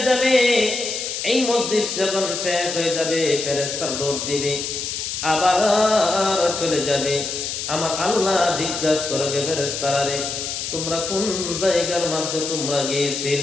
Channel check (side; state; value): left; noise; hiss, 4 dB below the sound